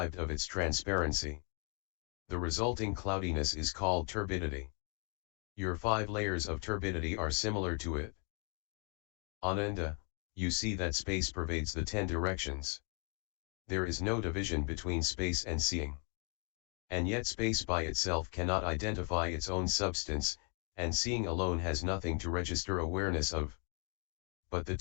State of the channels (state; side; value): quieter; right; 38.5 dB